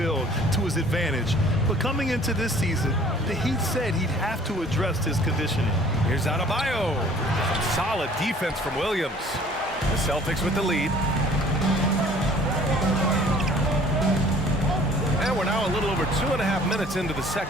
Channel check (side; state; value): both; normal; correlation 0.52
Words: to his advantage. But coming into this season, the Heat said he'd have to address his conditioning. Here's Adebayo. Some solid defense from Williams. The Celtics with the lead. And we're now a little over 2.5 minutes into the